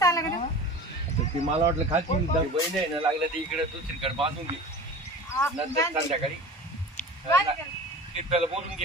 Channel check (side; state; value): both; normal; correlation 0.37